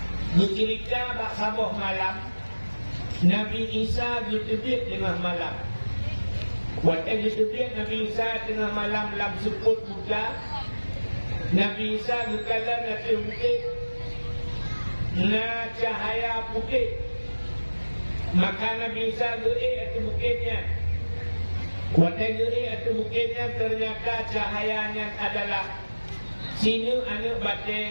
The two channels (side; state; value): both; inverted; correlation -1.00